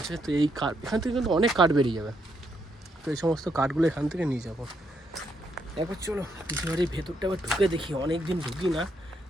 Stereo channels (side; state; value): both; normal; correlation 0.76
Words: তো এই কাঠ এখান থেকে কিন্তু অনেক কাঠ বেরিয়ে যাবে। তো এই সমস্ত কাঠগুলো এখান থেকে নিয়ে যাবো। একবার চলো পিসি বাড়ির ভেতরটা আবার ঢুকে দেখি, অনেক দিন ঢুকি না,